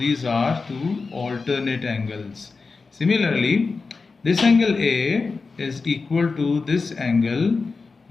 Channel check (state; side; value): quieter; right; 4.3 dB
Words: are two alternate angles. Similarly, this angle A is equal to this angle